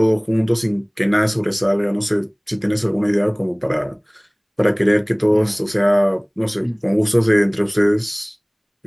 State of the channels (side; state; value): both; identical; correlation 1.00